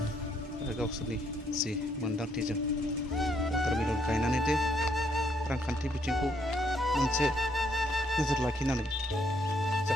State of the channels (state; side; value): normal; both; correlation 0.72